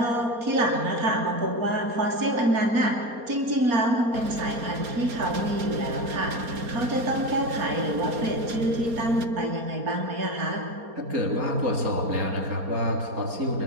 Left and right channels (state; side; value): late; left; 4.3 ms